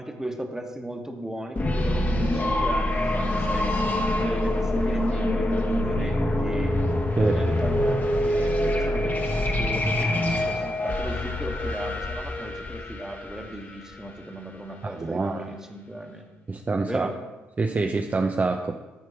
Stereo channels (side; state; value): both; normal; correlation 0.85